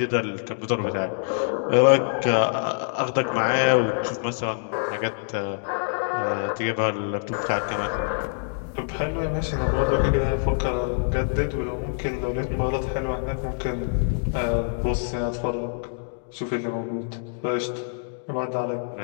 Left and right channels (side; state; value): right; silent; digital silence